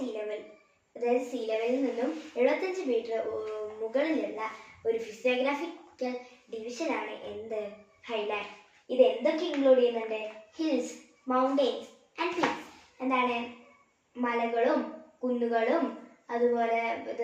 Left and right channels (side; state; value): both; identical; correlation 1.00